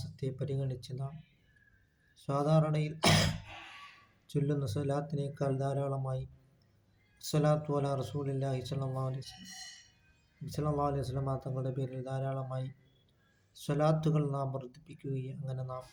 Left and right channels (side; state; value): both; identical; correlation 1.00